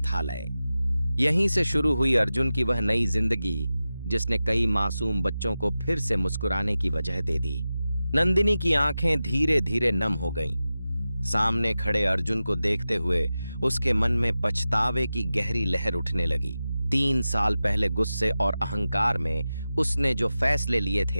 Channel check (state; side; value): inverted; both; correlation -0.94